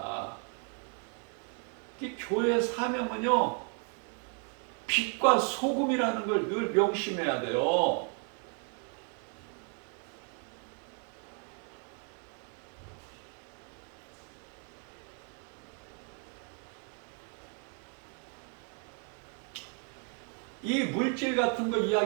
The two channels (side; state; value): left; quieter; 39.4 dB